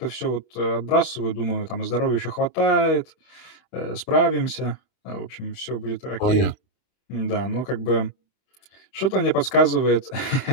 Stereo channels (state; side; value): late; right; 31 ms